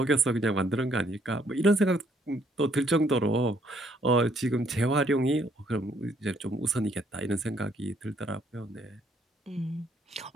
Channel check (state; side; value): normal; both; correlation 0.67